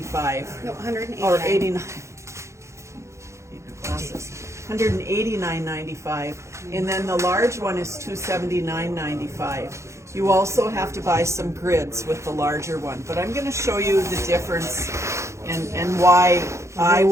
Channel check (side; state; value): left; late; 0.14 ms